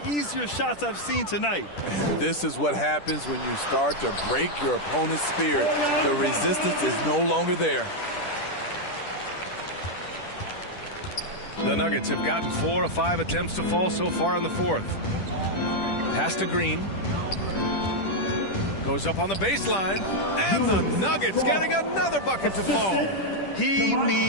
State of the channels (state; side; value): late; right; 10 ms